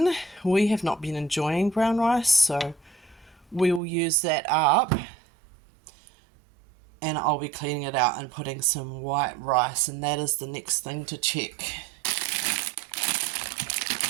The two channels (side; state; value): left; drops out; at 3.8 s